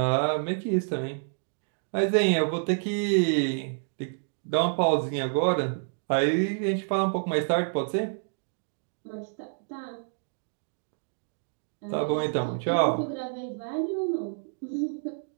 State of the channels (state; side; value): silent; left; digital silence